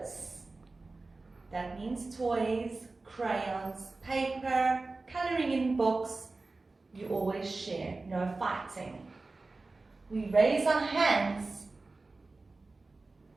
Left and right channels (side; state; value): left; quieter; 3.5 dB